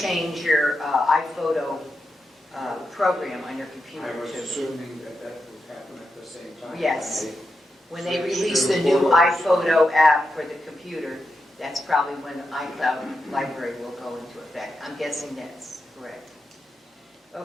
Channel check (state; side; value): normal; both; correlation 0.87